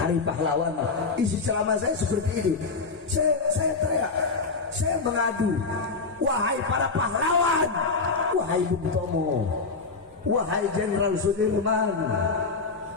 pahlawan? Isi ceramah saya seperti ini. Saya teriak, saya mengadu, wahai para pahlawan, wahai Bung Tomo, wahai Jenderal Sudirman,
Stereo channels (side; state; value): right; quieter; 4.2 dB